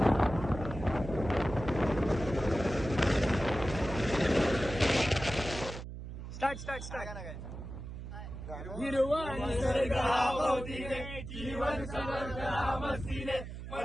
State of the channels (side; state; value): right; noise; hum, 10 dB below the sound